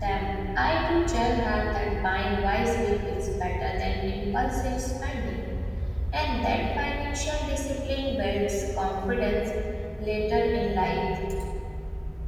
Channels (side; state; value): both; identical; correlation 1.00